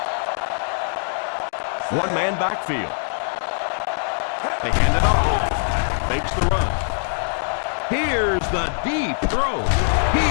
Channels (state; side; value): silent; right; digital silence